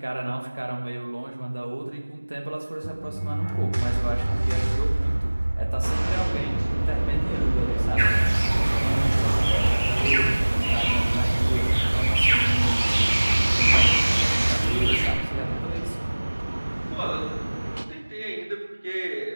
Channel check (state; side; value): inverted; both; correlation -1.00